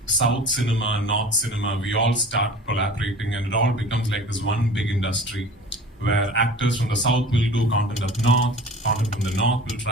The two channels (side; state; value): both; normal; correlation 0.41